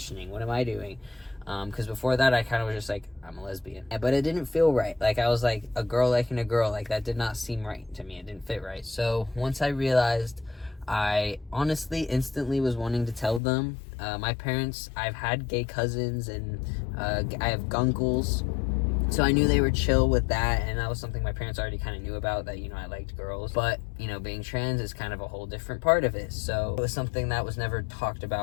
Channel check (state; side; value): drops out; right; at 13.4 s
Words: What am I doing? Because before that, I kind of was just like, I'm a lesbian. But it didn't feel right. Like, I was like, a girl liking a girl. Like, that did not seem right to me. It didn't fit right. So, once I realized, I honestly instantly was wanting to tell them. My parents, I've had gay cousins, and I have gunkles. So I knew they were chill with that, and that was something my parents already kind of knew about, that, you know, I liked girls. But, you know, being trans is kind of a whole different part of it. So it was something that was never talked